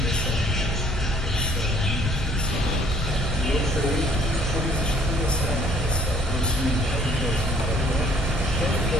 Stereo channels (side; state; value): both; normal; correlation 0.60